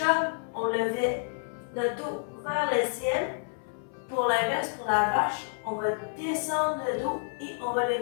on levait le dos vers le ciel. Pour l'inverse, pour la vache, on va descendre le dos et on va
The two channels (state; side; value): silent; right; 58 dB below the other